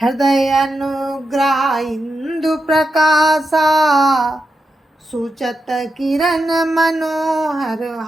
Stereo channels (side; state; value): both; normal; correlation 0.87